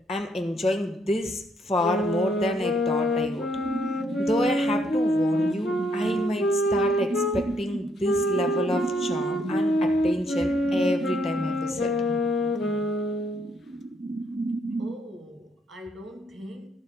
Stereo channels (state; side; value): normal; both; correlation 0.71